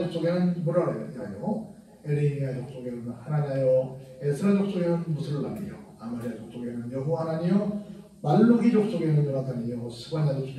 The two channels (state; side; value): identical; both; correlation 1.00